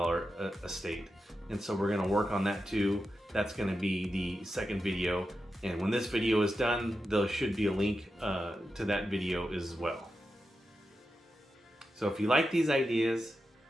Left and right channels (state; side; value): normal; both; correlation 0.89